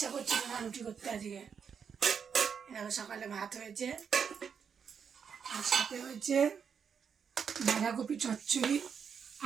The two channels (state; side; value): quieter; left; 6.9 dB